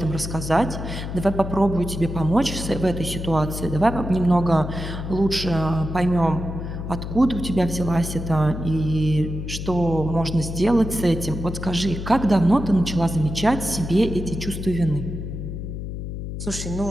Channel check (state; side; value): noise; left; hum, 6 dB below the sound